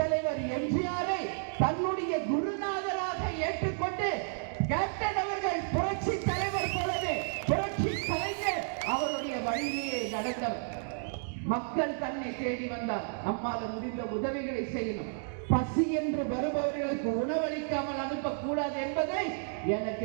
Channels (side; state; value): left; silent; digital silence